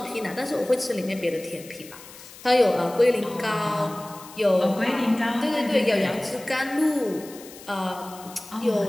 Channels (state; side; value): noise; left; hiss, 18 dB below the sound